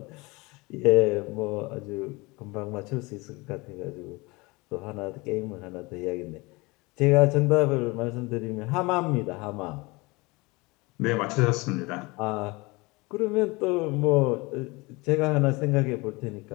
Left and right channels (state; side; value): quieter; right; 24.6 dB